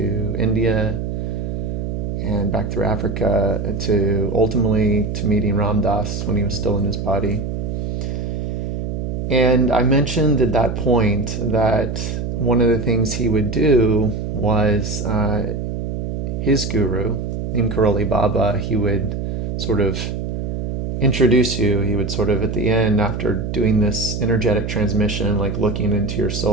India and back through Africa to ultimately to meeting Ram Dass when he was still in his body. And I mentioned at that point that one of the things he would do was his guru, Neem Karoli Baba, he would sort of introduce you. He would sort of at the end, after doing this energetic transmission, like looking into your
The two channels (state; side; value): noise; right; hum, 3 dB below the sound